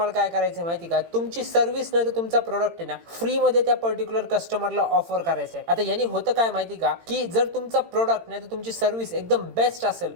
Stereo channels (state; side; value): late; left; 18 ms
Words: काय करायचं माहिती का, तुमची सर्व्हिस नाही तर तुमचा प्रोडक्ट आहे ना फ्रीमध्ये त्या पर्टिक्युलर कस्टमरला ऑफर करायचं आहे. आता यांनी होतं काय माहिती का, की जर तुमचा प्रोडक्ट नाही तर तुमची सर्व्हिस एकदम बेस्ट असेल